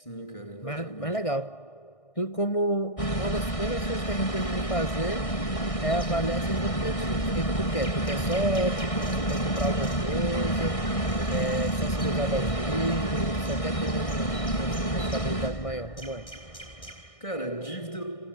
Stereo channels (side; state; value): right; late; 1.6 ms